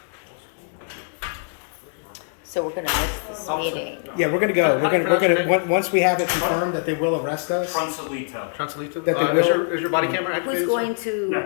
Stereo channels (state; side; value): silent; right; 63 dB below the other